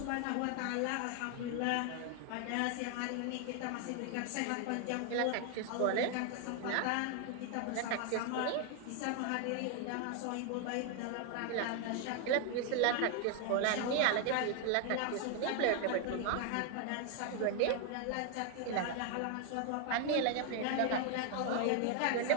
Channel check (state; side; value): different; both; correlation 0.00